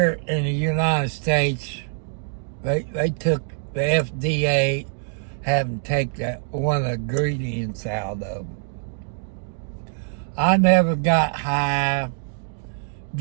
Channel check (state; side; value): silent; left; digital silence